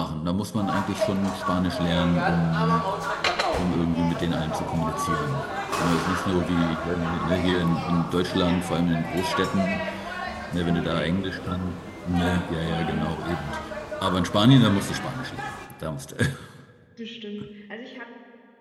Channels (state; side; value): identical; both; correlation 1.00